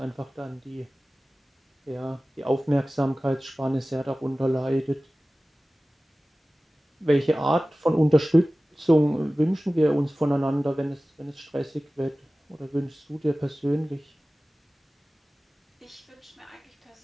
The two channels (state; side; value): normal; both; correlation 0.97